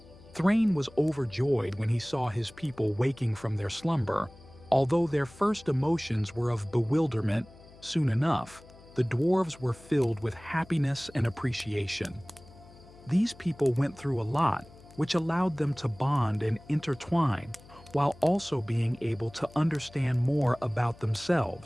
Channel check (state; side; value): noise; left; hum, 22 dB below the sound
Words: Thrain was overjoyed when he saw his people waking from their slumber. Although their first emotions were of bewilderment, soon enough, the dwarves were filled with happiness and appreciation. These people went through a lot, which allowed them to bond and intertwine, while also being able to understand more about